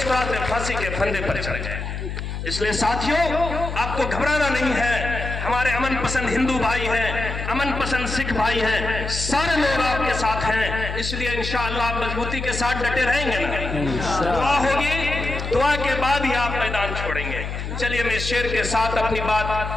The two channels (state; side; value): noise; left; hum, 6 dB below the sound